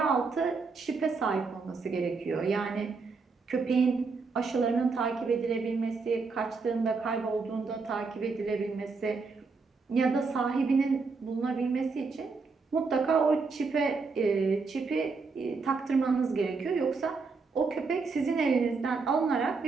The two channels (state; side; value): quieter; left; 4.5 dB